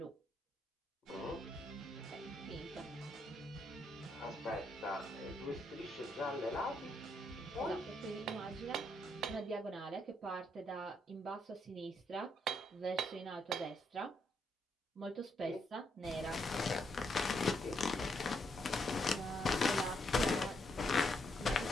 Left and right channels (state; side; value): normal; both; correlation 0.76